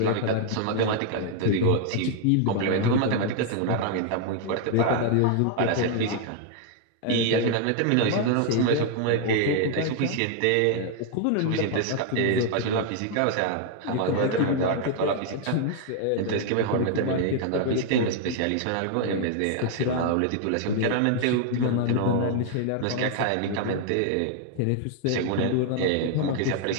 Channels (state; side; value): different; both; correlation 0.00